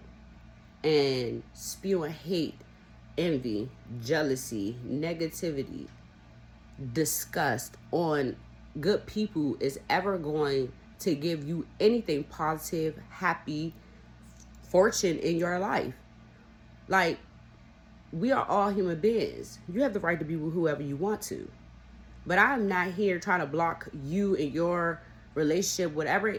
and spewing hate, envy, jealousy, negativity, disgust on good people is ever going to give you anything positive, happy, fortune in your life. Like, we are all human beings. You have the right to be with whoever you want to. But I'm not here trying to block you and your relationship, whatever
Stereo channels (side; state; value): both; identical; correlation 1.00